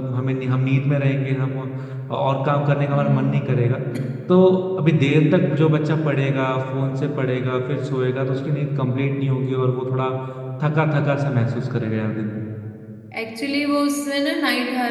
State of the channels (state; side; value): identical; both; correlation 1.00